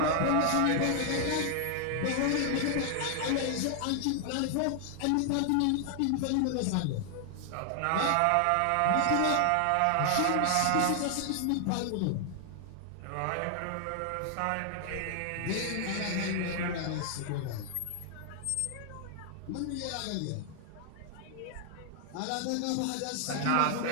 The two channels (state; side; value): different; both; correlation 0.00